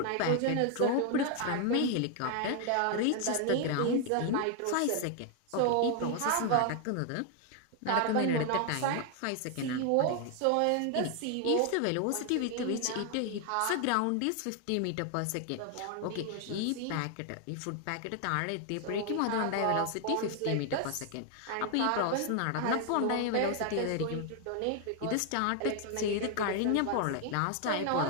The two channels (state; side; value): different; both; correlation 0.00